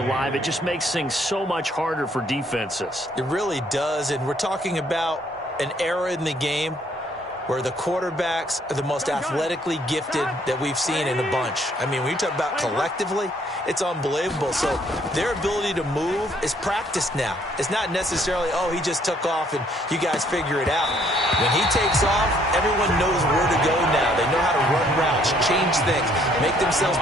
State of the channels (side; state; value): both; normal; correlation 0.65